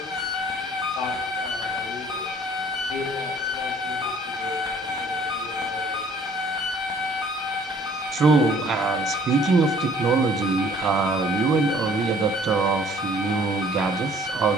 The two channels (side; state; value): both; normal; correlation 0.56